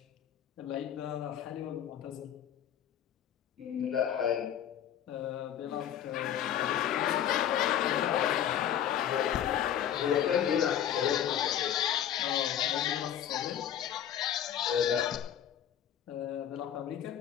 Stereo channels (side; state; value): right; quieter; 10.1 dB